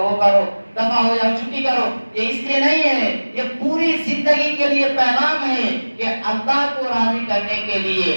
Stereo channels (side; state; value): both; inverted; correlation -1.00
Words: وہ کرو، دفع ہو جاؤ چھٹی کرو، یہ اس لیے نہیں ہے، یہ پوری زندگی کے لیے پیغام ہے کہ اللہ کو راضی کرنے کے لیے